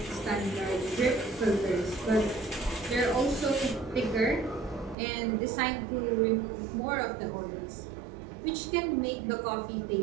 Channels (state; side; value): drops out; left; at 5.0 s